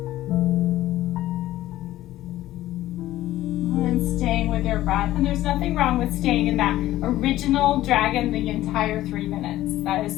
And staying with your breath. And there's nothing wrong with staying in that original dragon the entire 3 minutes. That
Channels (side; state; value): right; quieter; 14.9 dB